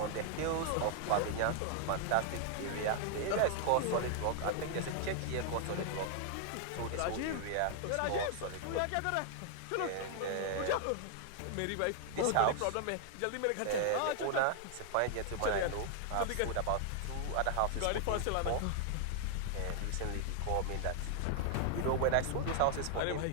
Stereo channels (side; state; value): both; different; correlation 0.00